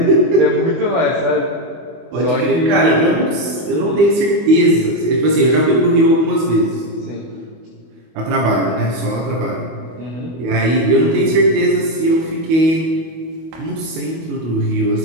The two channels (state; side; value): late; left; 25 ms